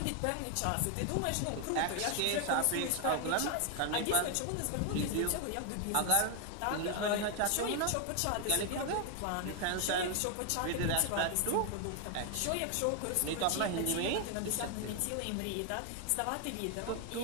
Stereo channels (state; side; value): different; both; correlation 0.00